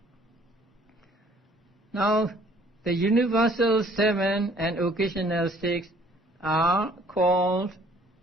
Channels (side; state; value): both; normal; correlation 0.58